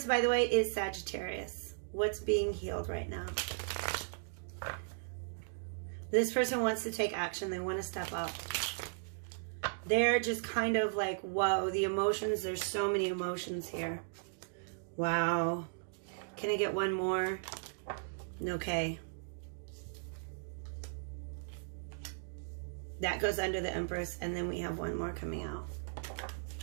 by the way, is Sagittarius. What's being healed right now? This person wants to take action. They want to step up. They're just kind of like, whoa, the emotions. There's so many emotions here. Wow. Can I get one more? Okay. That goes under the Empress. And then we have one more coming out.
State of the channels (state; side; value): silent; left; digital silence